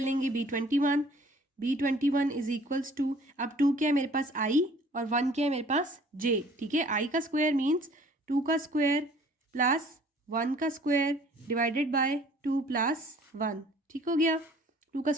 B21। B21 is equals to, अब 2 क्या है मेरे पास I और 1 क्या है मेरे पास J, ठीक है। I का स्क्वायर मीन्स 2 का स्क्वायर प्लस 1 का स्क्वायर डिवाइडेड बाय 2 प्लस 1, ठीक हो गया। 2 का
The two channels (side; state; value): both; normal; correlation 0.54